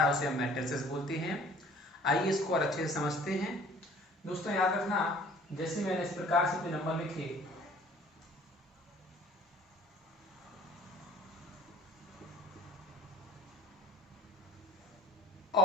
उसे हम मैट्रिसेस बोलते हैं। आइए इसको और अच्छे से समझते हैं। दोस्तों याद रखना, जैसे मैंने इस प्रकार से कोई नंबर लिखे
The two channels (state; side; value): normal; both; correlation 0.51